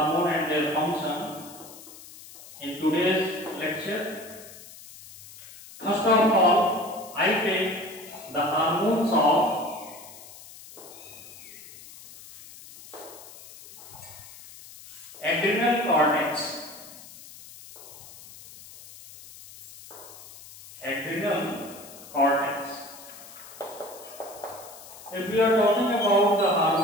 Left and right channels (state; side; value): noise; left; hiss, 18 dB below the sound